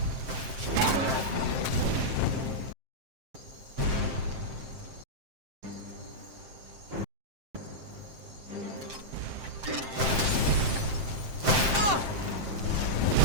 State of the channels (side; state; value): left; late; 7.6 ms